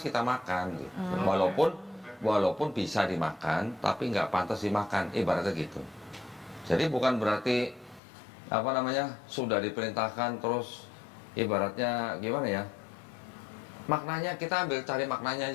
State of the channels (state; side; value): drops out; right; at 8.0 s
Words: makan gitu. Walaupun bisa dimakan, tapi enggak pantas dimakan, ibaratnya gitu. Jadi bukan berarti apa namanya sudah diperintahkan terus ibaratnya gimana ya, maknanya kita ambil cari maknanya